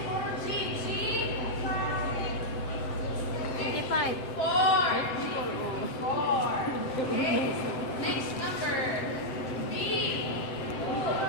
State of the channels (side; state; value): right; late; 7.9 ms